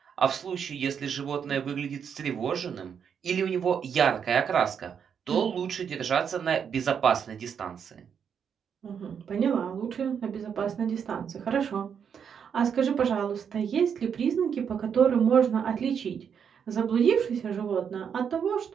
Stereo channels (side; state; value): left; quieter; 7.4 dB